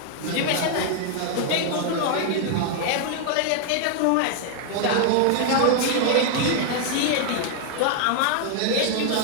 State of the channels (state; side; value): different; both; correlation 0.00